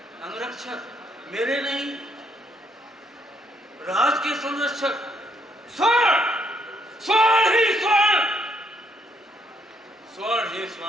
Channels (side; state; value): both; normal; correlation 0.72